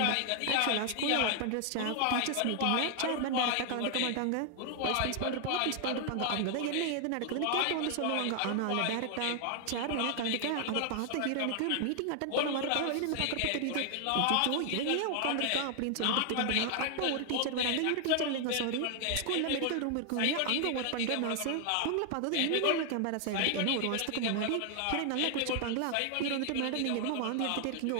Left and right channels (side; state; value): both; different; correlation 0.00